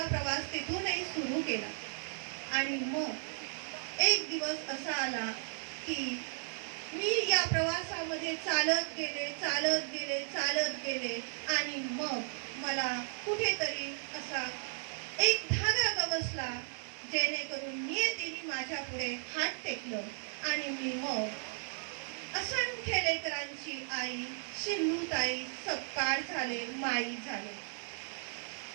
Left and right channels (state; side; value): silent; left; 54 dB below the other